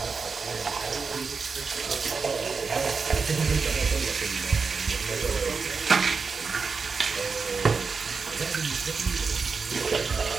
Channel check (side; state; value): left; quieter; 5.0 dB